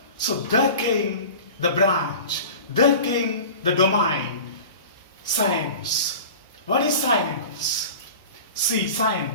So, there came the branch. There came the domain. Science. What is science? See,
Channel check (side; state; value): both; inverted; correlation -0.37